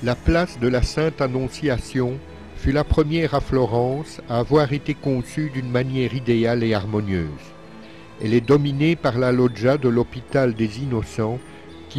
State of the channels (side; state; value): both; identical; correlation 1.00